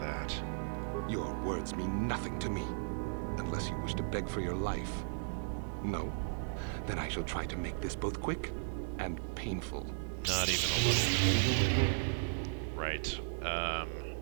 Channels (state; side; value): silent; left; digital silence